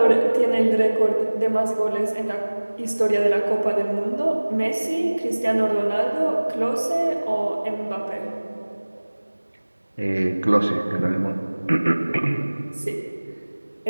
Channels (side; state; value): both; inverted; correlation -1.00